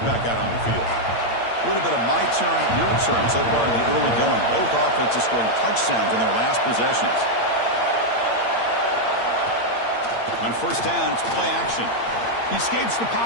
back out on the field. A little bit of my turn, your turn so far in the early going. Both offenses scoring touchdowns in their last possessions. On first down, it's play action. He escapes the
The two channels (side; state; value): right; late; 8.8 ms